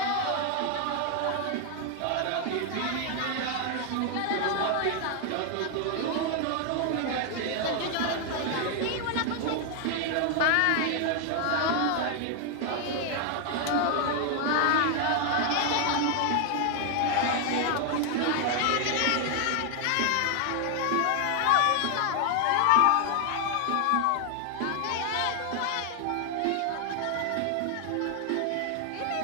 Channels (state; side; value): different; both; correlation 0.00